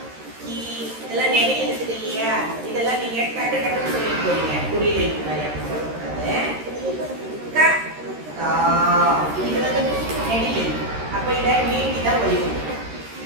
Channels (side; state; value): left; late; 13 ms